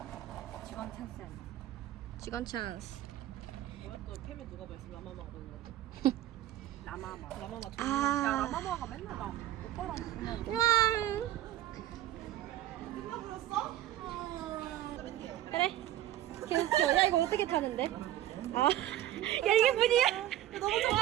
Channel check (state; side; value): quieter; left; 13.4 dB